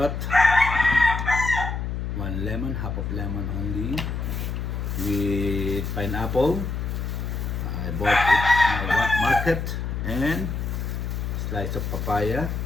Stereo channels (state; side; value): noise; left; hum, 3 dB below the sound